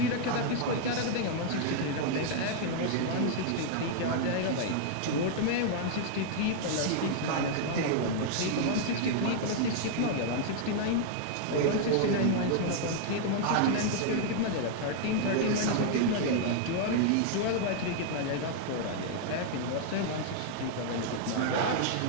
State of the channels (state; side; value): different; both; correlation 0.00